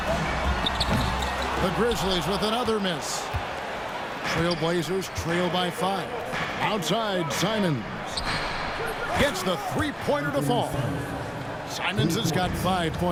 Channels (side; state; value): both; identical; correlation 1.00